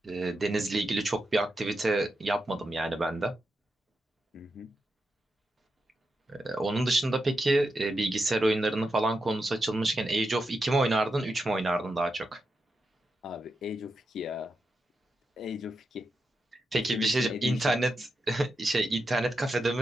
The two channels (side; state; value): both; normal; correlation 0.87